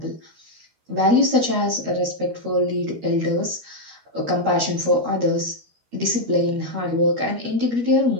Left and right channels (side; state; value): left; late; 13 ms